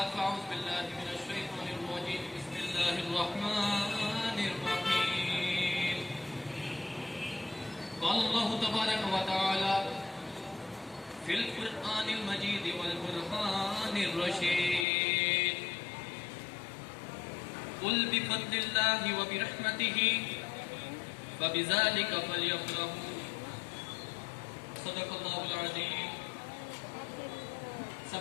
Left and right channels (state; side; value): drops out; right; at 14.9 s